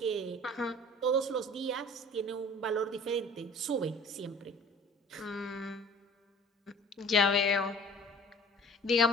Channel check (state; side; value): normal; both; correlation 0.47